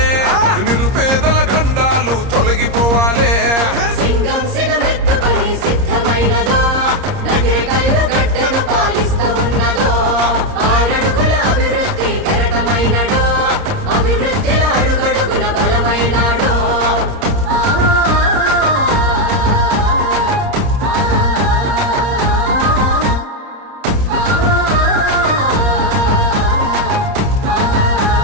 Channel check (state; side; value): late; left; 30 ms